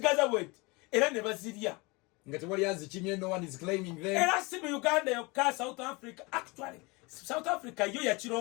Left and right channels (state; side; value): quieter; right; 26.2 dB